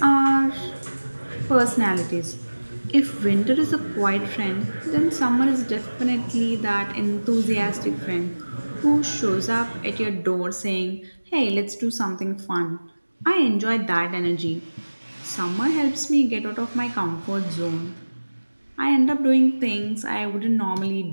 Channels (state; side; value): inverted; both; correlation -1.00